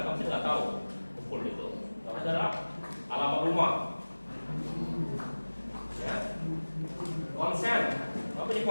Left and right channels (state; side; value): inverted; both; correlation -1.00